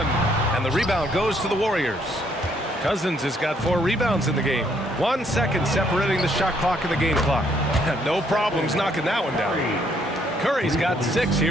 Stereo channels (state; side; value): normal; both; correlation 0.69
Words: and the rebound goes to the Warriors. Cousins has got 4 rebounds in the game. 1 second separating the shot clock and the game clock. No problems knocking that one down. Curry's got 6